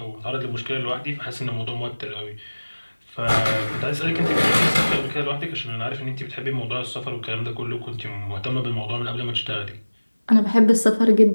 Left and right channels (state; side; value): inverted; both; correlation -1.00